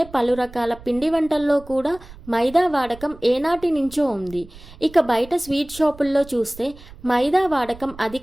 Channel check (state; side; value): noise; right; rumble, 19 dB below the sound